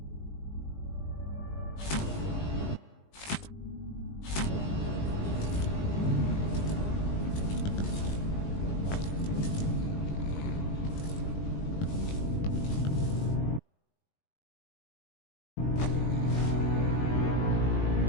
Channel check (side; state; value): right; late; 20 ms